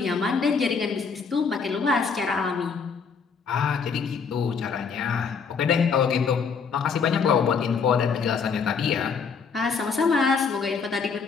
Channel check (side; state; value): right; quieter; 5.7 dB